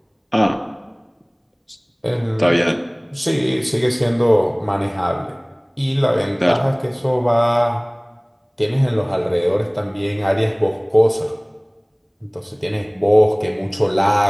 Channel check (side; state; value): both; identical; correlation 1.00